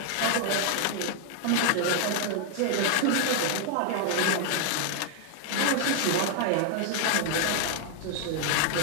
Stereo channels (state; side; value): different; both; correlation 0.00